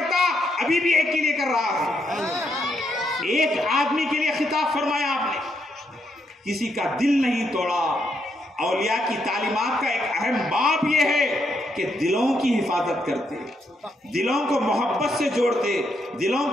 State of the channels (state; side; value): normal; both; correlation 0.78